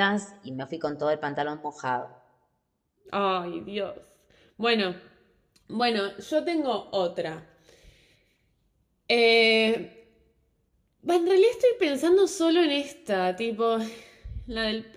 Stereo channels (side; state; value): both; identical; correlation 1.00